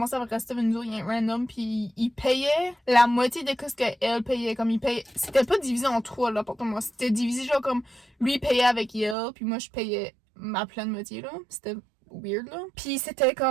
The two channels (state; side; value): drops out; left; at 9.2 s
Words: à rester avec nous autres, il y a un random, puis il payait la moitié de ce qu'elle payait. Comme il payait, c'était pas divisé en 3 l'appartement, c'était divisé genre comme lui payait avec elle, puis moi je payais ma pleine moitié, là. C'était weird là. Puis c'était